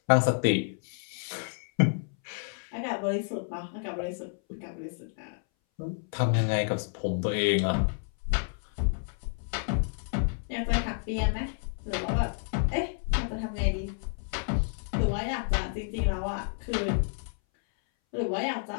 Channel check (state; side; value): silent; right; 58 dB below the other